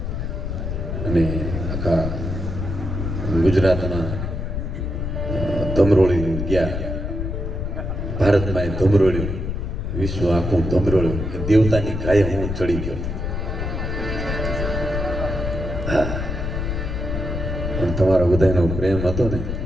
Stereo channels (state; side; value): noise; left; rumble, 3 dB below the sound